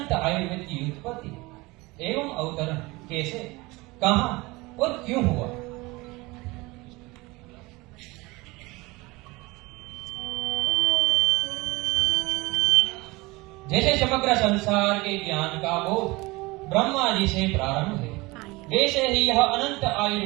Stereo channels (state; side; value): quieter; left; 22.8 dB